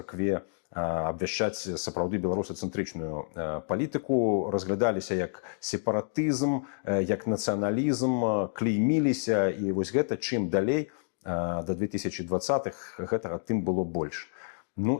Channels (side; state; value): right; silent; digital silence